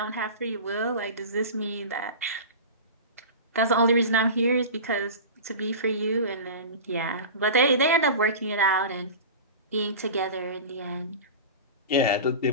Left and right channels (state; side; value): inverted; both; correlation -0.31